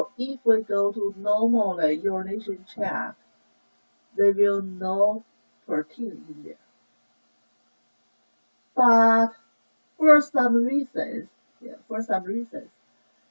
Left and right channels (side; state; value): both; inverted; correlation -1.00